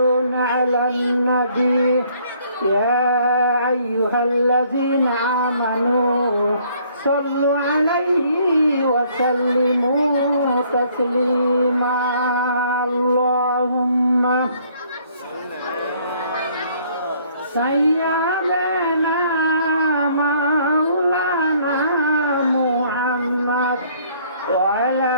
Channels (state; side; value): inverted; both; correlation -0.62